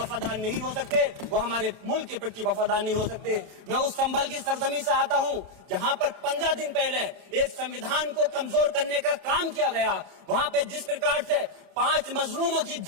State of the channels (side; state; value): left; late; 29 ms